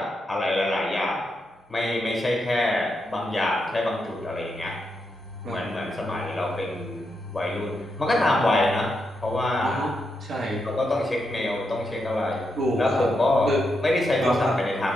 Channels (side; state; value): both; normal; correlation 0.83